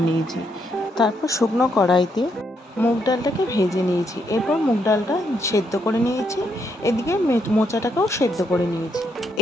निয়েছি, तारपर शुकनो कड़ाईते मुग डालटाके भेजे निয়েছি, एरपर मुग डालटा सेদ্ধ करे निয়েছি, एदिके मोचाटाकेও सेদ্ধ करे निয়েছি।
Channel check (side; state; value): both; normal; correlation 0.76